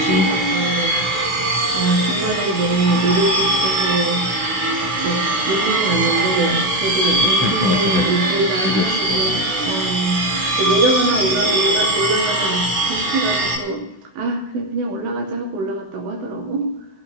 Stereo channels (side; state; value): left; late; 16 ms